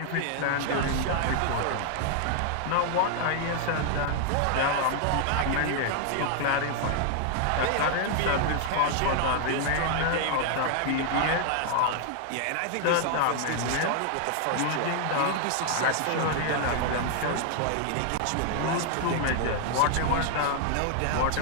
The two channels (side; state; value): both; different; correlation 0.00